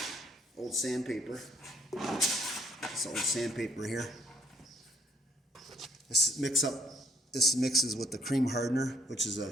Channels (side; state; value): both; normal; correlation 0.65